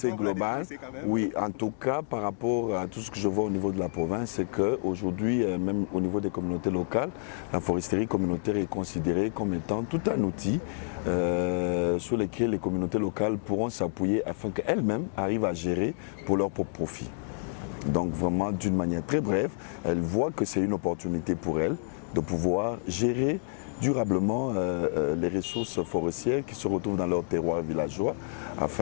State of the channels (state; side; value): silent; right; 59 dB below the other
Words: vous la définissez quand même? Oui, en tout cas, par rapport à tout ce que je vois au niveau de la province, c'est qu'aujourd'hui, même au niveau des communautés locales, la foresterie communautaire est considérée comme étant tout un outil sur lequel les communautés locales pourront s'appuyer afin qu'elles-mêmes arrivent à gérer pour leur propre profit. Donc vraiment, d'une manière très brève, elles voient que c'est une opportunité pour elles de pouvoir gérer durablement les ressources forestières qui se retrouvent dans leur terroir villageois